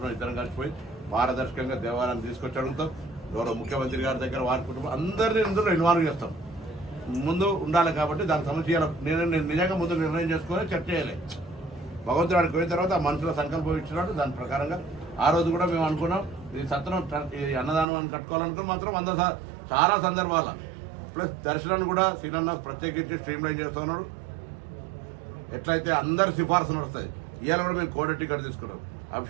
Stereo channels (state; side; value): drops out; left; at 17.9 s